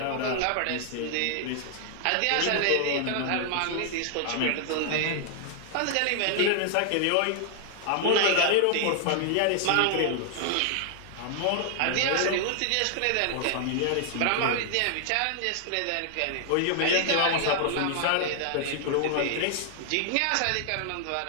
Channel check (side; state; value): both; different; correlation 0.00